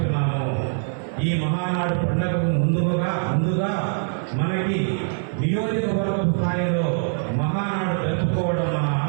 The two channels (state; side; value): silent; left; 58 dB below the other